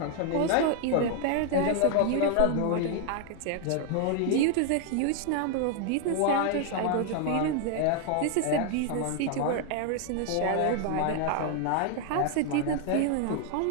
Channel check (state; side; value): different; both; correlation 0.00